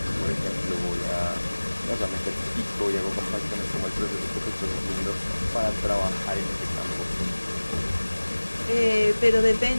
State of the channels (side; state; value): both; inverted; correlation -1.00